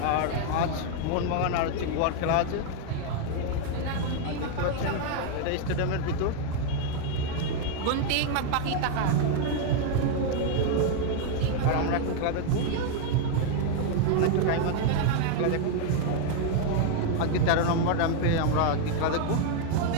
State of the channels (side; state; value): both; different; correlation 0.00